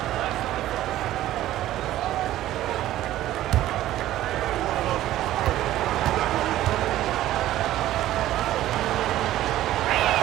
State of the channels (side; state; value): left; quieter; 14.1 dB